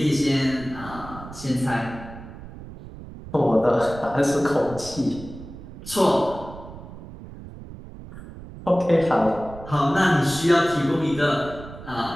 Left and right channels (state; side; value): noise; right; rumble, 14 dB below the sound